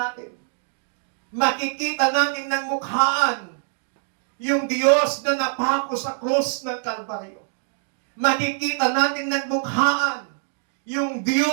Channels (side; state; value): left; silent; digital silence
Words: atin. Makikita natin ng mukhaan yung Diyos na napako sa krus ng Kalbaryo. Makikita natin ng mukhaan yung